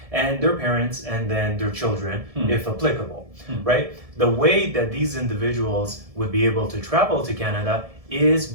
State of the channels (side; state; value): left; late; 1.7 ms